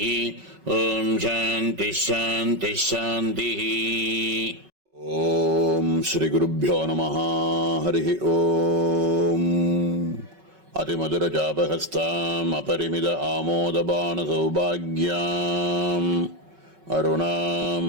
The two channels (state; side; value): late; left; 5.3 ms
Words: ஓம் சாந்தி சாந்தி சாந்தி. ஓம் ஸ்ரீ குருப்யோ நமஹ. ஹரி ஓம். அதிமதுரஜாபஹஸ்தாம் அபரிமித ஆமோதபான சௌபாக்யாம் அருணாம்